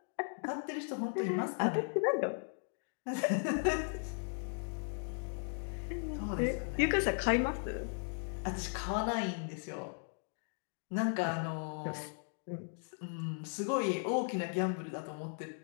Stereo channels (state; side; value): silent; right; 53 dB below the other